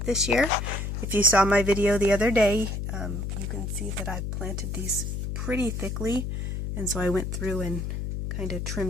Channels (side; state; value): left; noise; hum, 3 dB below the sound